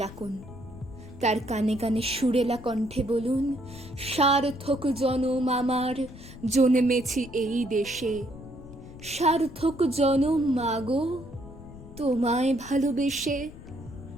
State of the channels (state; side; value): noise; left; rumble, 16 dB below the sound